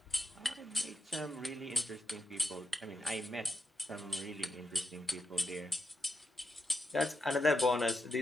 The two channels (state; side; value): normal; both; correlation 0.85